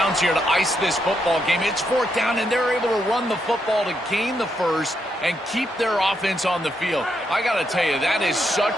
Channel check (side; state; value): both; normal; correlation 0.80